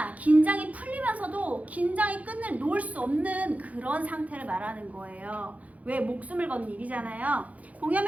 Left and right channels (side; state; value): left; late; 0.070 ms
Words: 긴장이 풀리면서도 긴장의 끈을 놓을 수 없는 그런 상태를 말하는 거예요. 왜? 목숨을 건 일이잖아요.